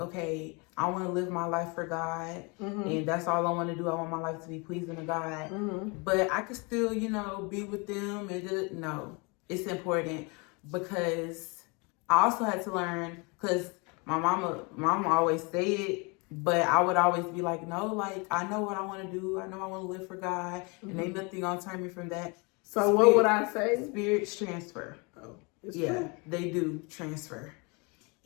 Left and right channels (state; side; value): quieter; right; 30.2 dB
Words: I want to live my life for God, and that's all I want to do. I want my life to be pleasing to God, but I could still, be with them. And no, it's important, because I also had to learn, because my mama always said it, but I would always be like, no, like, I know what I want to do. I know I want to live for God, and ain't nothing gonna turn me from that. So what would I say? Spirits transfer. It's true. They do transfer.